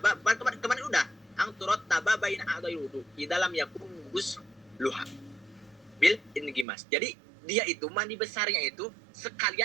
kemarin udah ang turot taba bain a'dai wudu di dalam yakun gus luha bil ingimas. Jadi dia itu mandi besarnya itu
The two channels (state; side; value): drops out; left; at 6.7 s